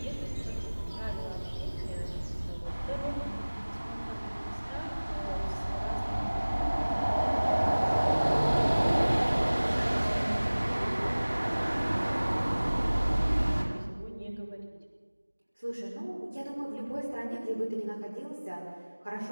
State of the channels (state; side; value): inverted; both; correlation -1.00